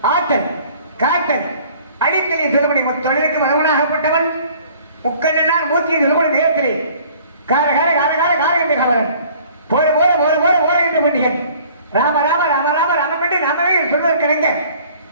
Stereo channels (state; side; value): inverted; both; correlation -0.53